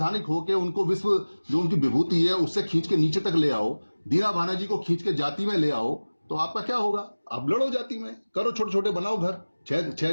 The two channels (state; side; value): inverted; both; correlation -1.00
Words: होके उनको विश्व जो उनकी विभूति है उससे खींच के नीचे तक ले आओ, दीना भानाजी को खींच के जाति में ले आओ, तो आपका क्या होगा? अब लड़ो जाति में, करो, छोटे छोटे बनाओ घर।